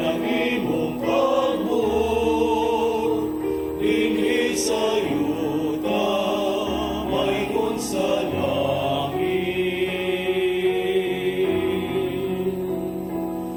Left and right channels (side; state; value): both; identical; correlation 1.00